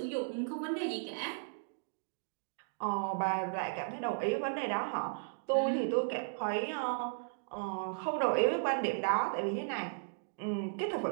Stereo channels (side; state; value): left; silent; digital silence